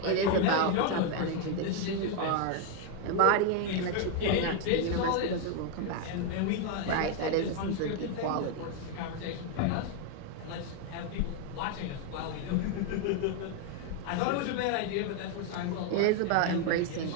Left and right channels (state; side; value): different; both; correlation 0.01